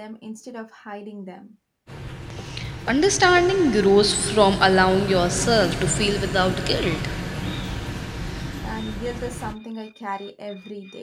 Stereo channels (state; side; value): identical; both; correlation 1.00